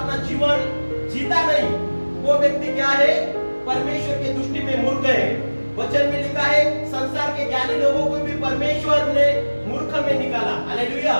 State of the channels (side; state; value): both; inverted; correlation -1.00